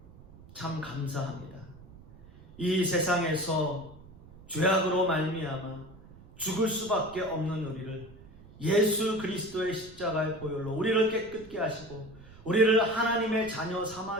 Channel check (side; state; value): right; noise; rumble, 20 dB below the sound